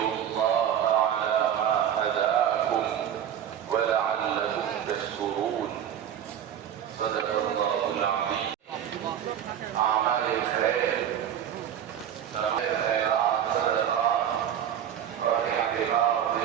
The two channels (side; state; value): left; quieter; 9.8 dB